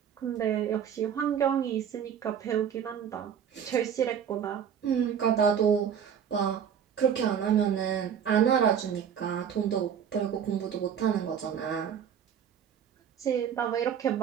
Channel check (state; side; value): quieter; left; 8.2 dB